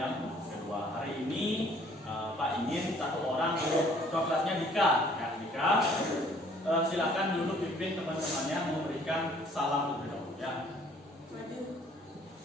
kedua. Hari ini Pak ingin satu orang untuk kelasnya Dika. Ya, Dika, silakan dulu pimpin teman-temannya memberikan salam terlebih dahulu ya. Maju.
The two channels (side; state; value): both; normal; correlation 0.58